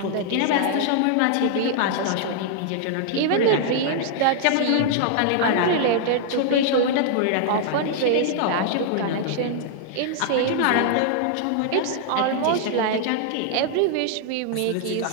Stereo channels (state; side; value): different; both; correlation -0.01